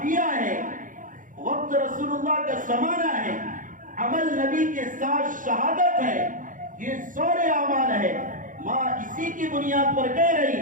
ہے، وقت رسول اللہ کا زمانہ ہے، عمل نبی کے ساتھ شہادت ہے، یہ سورے اعمال ہے. ماں اسی کی بنیاد پر کہہ رہی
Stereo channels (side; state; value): left; late; 0.38 ms